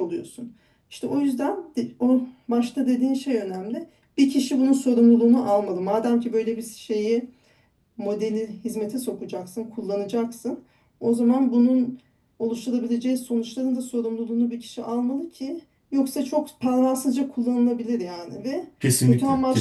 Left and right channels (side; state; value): both; identical; correlation 1.00